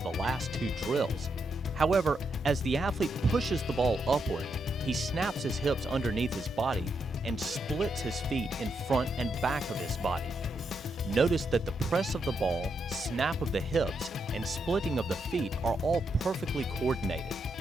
last two drills. However, as the athlete pushes the ball upward, he snaps his hips underneath his body and splits his feet in front and back of his body. Notice that the press of the ball, snap of the hips, and splitting of the feet are all perfectly coordinated.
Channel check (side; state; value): both; normal; correlation 0.81